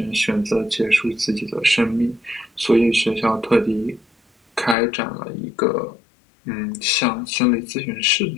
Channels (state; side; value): drops out; right; at 4.8 s